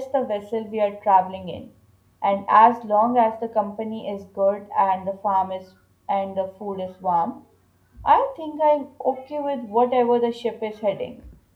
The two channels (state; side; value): identical; both; correlation 1.00